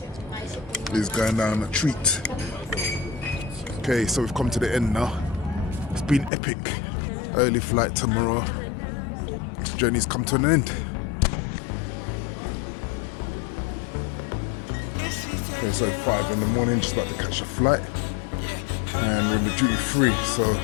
is going down a treat. Okay, so we've come to the end now. It's been epic. Early flight tomorrow. This journey's come to an end. Okay, so 5 in the morning, just about to catch a flight. And we're in the duty free, so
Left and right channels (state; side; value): drops out; right; at 6.3 s